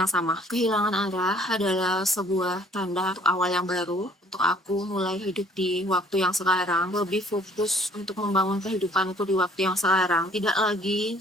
sama. Kehilangan arah adalah sebuah tanda untuk awal yang baru. Untuk aku mulai hidup di waktu yang sekarang, lebih fokus untuk membangun kehidupanku di waktu yang sekarang. Tidak lagi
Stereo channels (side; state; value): both; normal; correlation 0.57